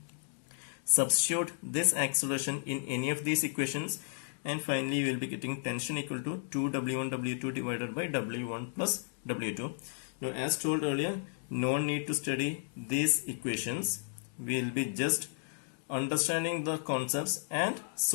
Substitute this acceleration in any of these equations, and finally you will be getting tension equal to 2W1 W2 divided by W1 plus W2. Now as told earlier, no need to study these equations. We will be just understanding the concepts and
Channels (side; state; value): right; silent; digital silence